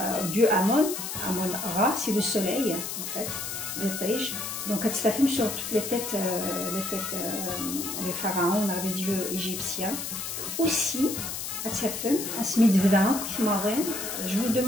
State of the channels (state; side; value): noise; left; hiss, 5 dB below the sound